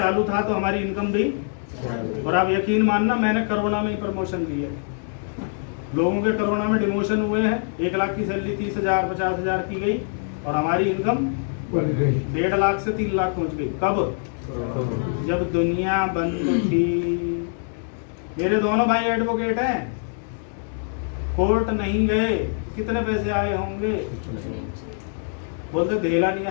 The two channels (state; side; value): silent; right; digital silence